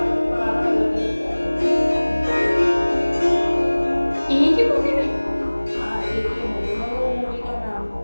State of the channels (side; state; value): both; inverted; correlation -1.00